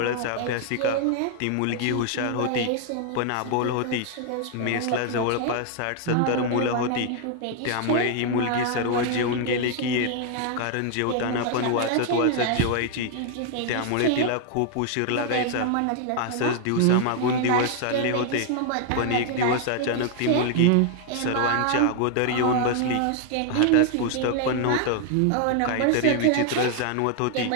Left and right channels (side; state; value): both; different; correlation 0.00